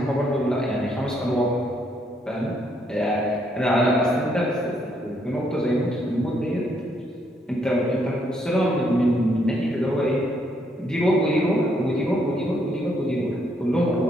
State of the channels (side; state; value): both; normal; correlation 0.73